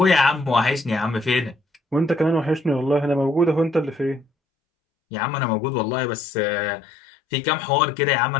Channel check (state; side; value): drops out; right; at 4.2 s